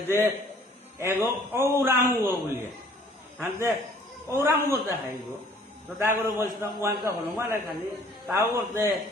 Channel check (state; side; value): normal; both; correlation 0.55